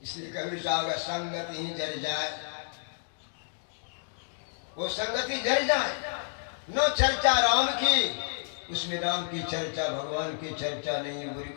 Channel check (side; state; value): right; silent; digital silence